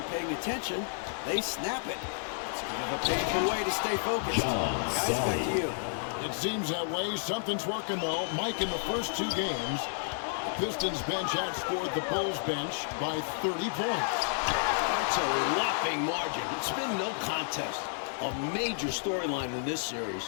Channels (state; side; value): silent; right; 57 dB below the other